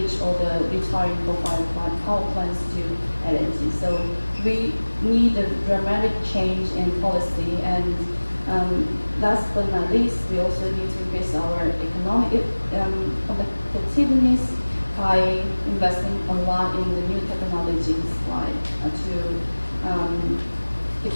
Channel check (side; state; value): both; inverted; correlation -1.00